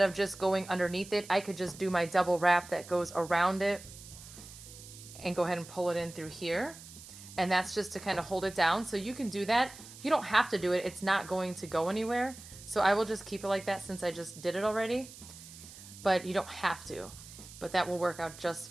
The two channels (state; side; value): noise; right; hiss, 17 dB below the sound